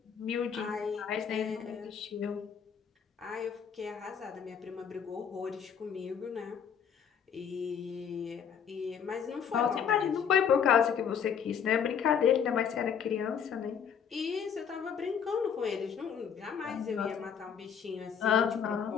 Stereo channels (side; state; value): right; quieter; 7.6 dB